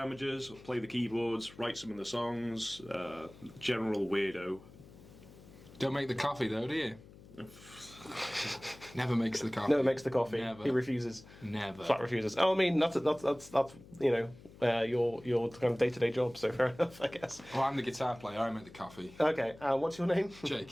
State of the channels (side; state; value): left; noise; hum, 20 dB below the sound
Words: play the keyboards, write some of the songs. General weirdo. Don't make the coffee though, do you? Never makes the coffee. Never makes the coffee. Never. He refuses. Never. Flat refuses. Oh, I mean, that's you know, your kind of day-to-day job. So fair enough, I guess. Well, I'm the guitar player. I make the coffee. Okay. What's your name?